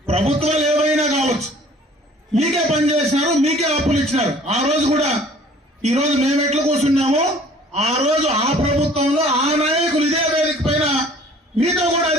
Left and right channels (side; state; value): both; normal; correlation 0.52